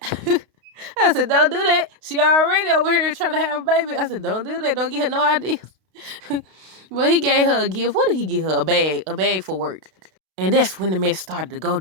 I said, don't do that. She already over here trying to have a baby. I said, don't do that. Don't give her no ideas. But he gave her a gift. What did he give her? A bag. A bag for work. And that's when the mess started to go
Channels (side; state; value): left; late; 32 ms